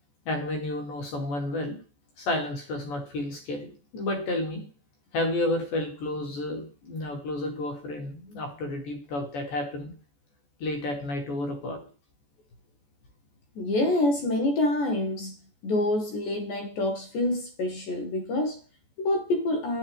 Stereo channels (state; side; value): late; right; 14 ms